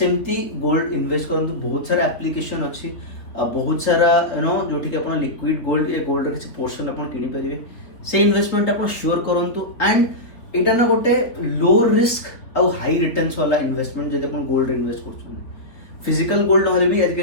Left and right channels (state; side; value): late; right; 3.6 ms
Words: गोल्ड इन्वेस्ट करूँ बहुत सारा एप्लिकेशन अच्छी बहुत सारा जो आप लिक्विड गोल्ड या गोल्ड किसी पोर्शन आप किनीपारे से इन्वेस्टमेंट आप श्योर करूँ एंड यहाँ ना गोटे लो रिस्क आउ हाई रिटर्न्स वाला इन्वेस्टमेंट जब आप गोल्ड इन्वेस्ट कर फिजिकल गोल्ड ना भी